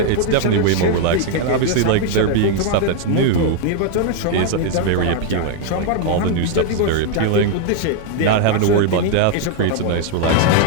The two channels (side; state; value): both; different; correlation 0.00